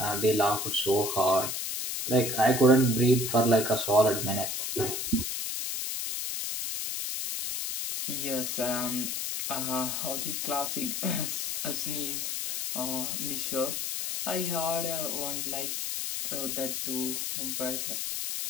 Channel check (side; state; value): left; noise; hiss, 2 dB below the sound